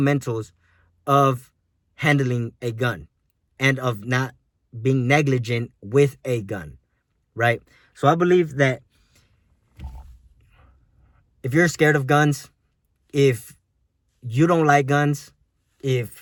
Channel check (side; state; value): both; identical; correlation 1.00